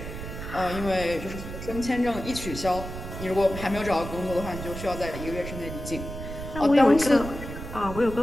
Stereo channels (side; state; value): right; noise; rumble, 9 dB below the sound